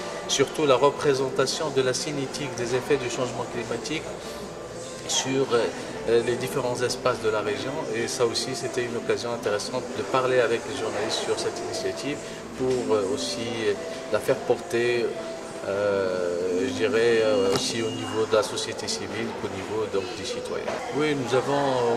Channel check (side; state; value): both; identical; correlation 1.00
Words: surtout la représentation de la cinétique des effets du changement climatique sur les différents espaces de la région. Et ça aussi, c'était une occasion intéressante de parler avec les journalistes sur cette initiative pour aussi la faire porter je dirais aussi au niveau de la société civile qu'au niveau des citoyens. Oui, nous avons